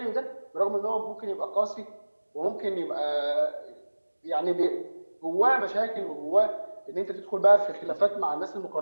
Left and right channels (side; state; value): both; inverted; correlation -1.00